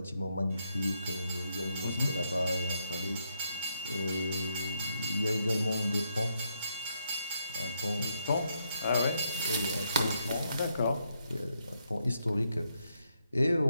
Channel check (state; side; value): inverted; both; correlation -0.78